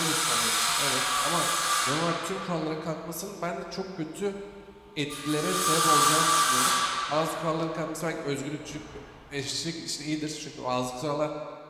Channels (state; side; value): identical; both; correlation 1.00